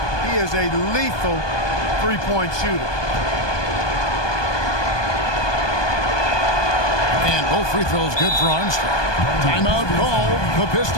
He is a lethal 3-point shooter. And both free throws good for Armstrong. Timeout called the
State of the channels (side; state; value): right; late; 1.2 ms